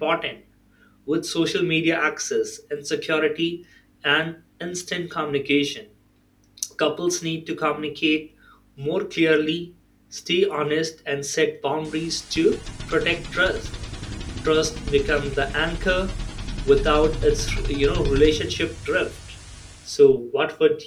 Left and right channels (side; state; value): both; identical; correlation 1.00